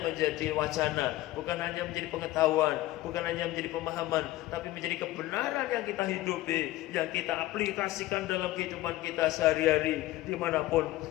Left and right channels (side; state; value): right; quieter; 16.6 dB